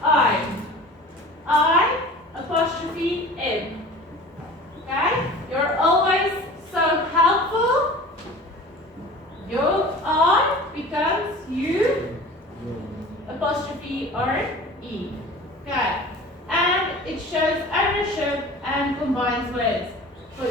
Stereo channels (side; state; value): both; normal; correlation 0.40